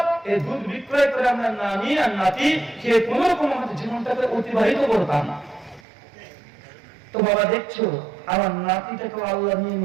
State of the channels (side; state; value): left; drops out; at 5.8 s